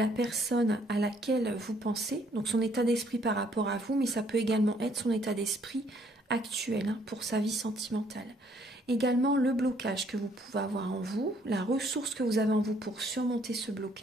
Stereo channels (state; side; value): normal; both; correlation 0.65